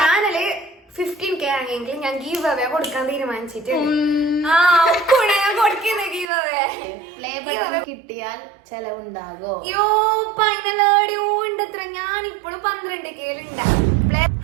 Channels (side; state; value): left; drops out; at 6.3 s